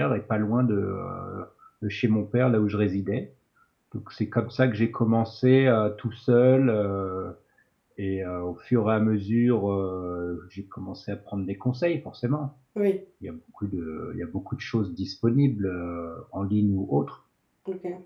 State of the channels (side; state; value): both; identical; correlation 1.00